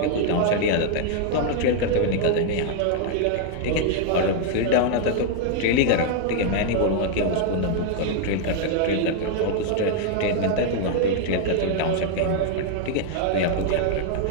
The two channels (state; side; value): different; both; correlation 0.00